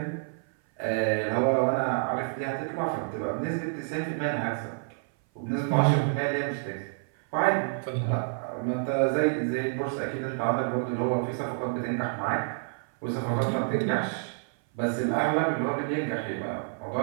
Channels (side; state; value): left; silent; 56 dB below the other